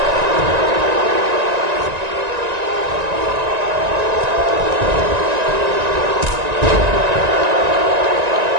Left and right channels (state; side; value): late; left; 1.9 ms